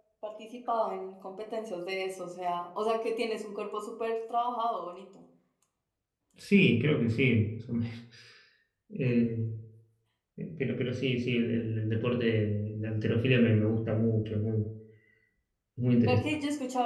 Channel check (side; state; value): both; identical; correlation 1.00